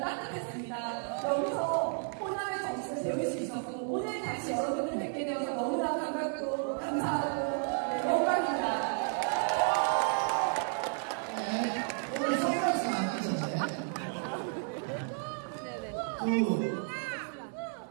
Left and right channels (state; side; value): silent; left; 56 dB below the other